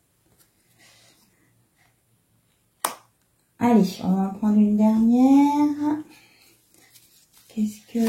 Allez, on va en prendre une dernière. Qu'est-ce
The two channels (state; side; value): identical; both; correlation 1.00